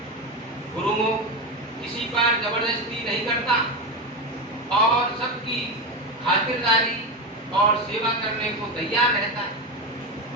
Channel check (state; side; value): normal; both; correlation 0.16